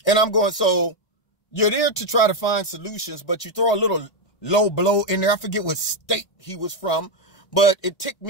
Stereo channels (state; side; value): late; right; 1.8 ms